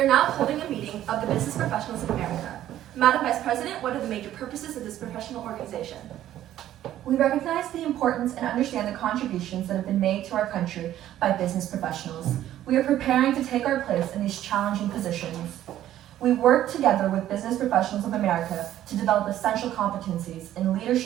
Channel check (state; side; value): quieter; left; 12.5 dB